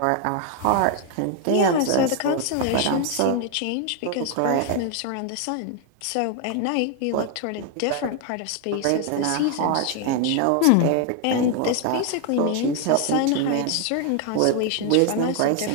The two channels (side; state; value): both; different; correlation 0.00